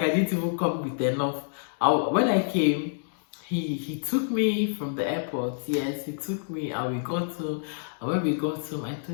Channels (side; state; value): right; silent; digital silence